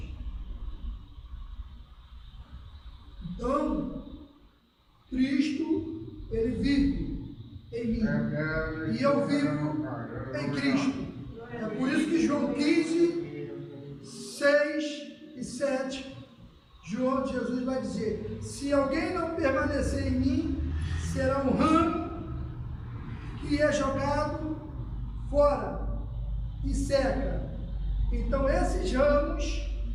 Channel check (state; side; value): identical; both; correlation 1.00